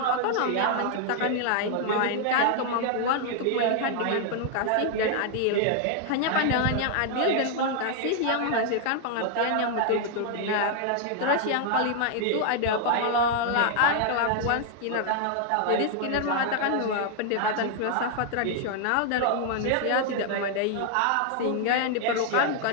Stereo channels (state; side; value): different; both; correlation 0.00